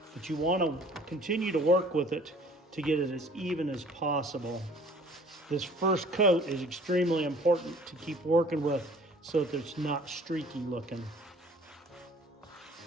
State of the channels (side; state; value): both; normal; correlation 0.52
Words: but you want to continue to work with it to get it as even as possible. This first coat is extremely important to keep working with so that it's not streaky looking.